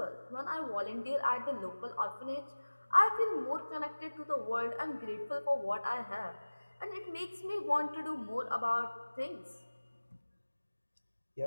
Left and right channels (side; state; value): both; inverted; correlation -1.00